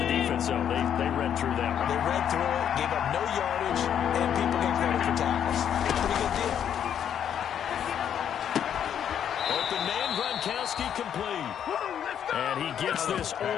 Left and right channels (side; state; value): right; quieter; 9.1 dB